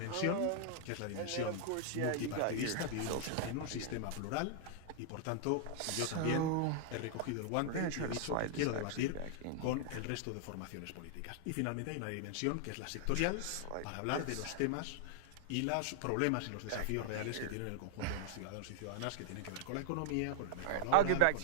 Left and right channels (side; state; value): both; different; correlation -0.01